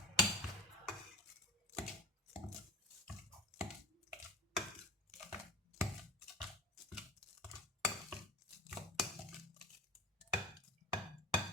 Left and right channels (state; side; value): normal; both; correlation 0.35